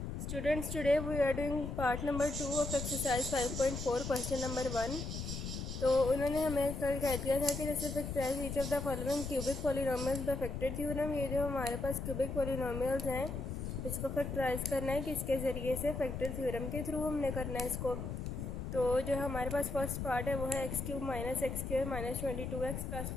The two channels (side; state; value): left; noise; rumble, 5 dB below the sound